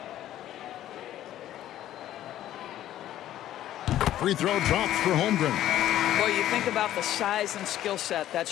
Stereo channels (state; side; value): quieter; right; 12.8 dB